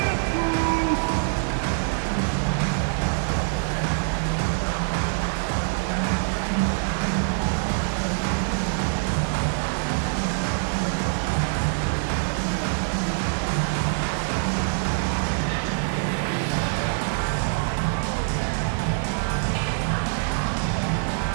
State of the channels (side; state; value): left; silent; digital silence